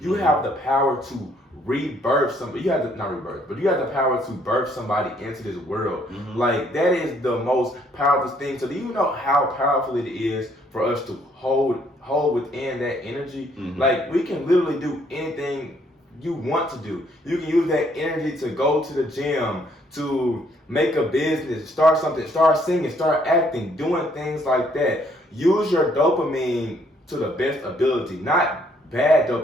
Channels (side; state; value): both; normal; correlation 0.66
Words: have the power to rebirth somebody. You have to, not rebirth, but you have the power to birth somebody into this world. Like, that is the most powerful thing. So do you know how powerful it is for us to hold within that energy? Like, we can literally do anything you want to do. You can use that energy to go to the gym, to make a business, start something, start singing, start acting, doing things like that. Use your dopamine to the best ability, not bad